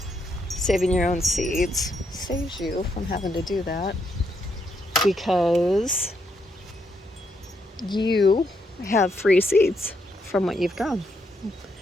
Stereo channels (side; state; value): both; normal; correlation 0.77